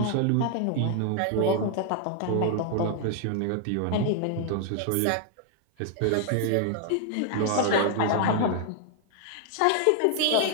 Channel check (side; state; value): both; different; correlation 0.00